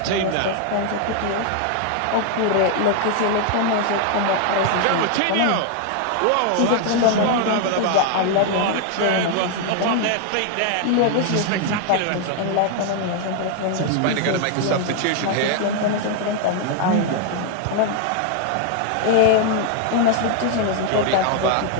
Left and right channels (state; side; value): different; both; correlation 0.00